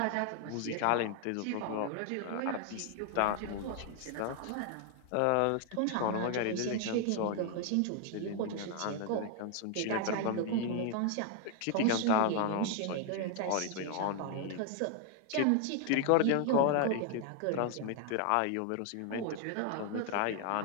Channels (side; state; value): both; different; correlation 0.00